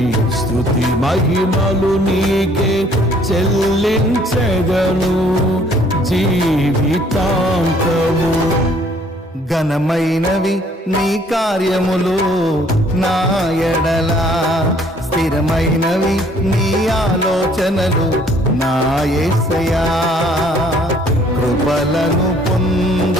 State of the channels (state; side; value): normal; both; correlation 0.60